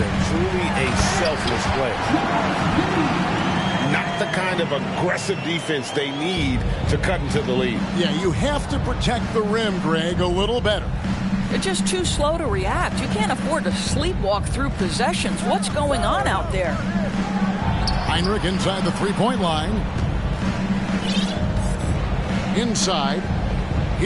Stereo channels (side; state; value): both; identical; correlation 1.00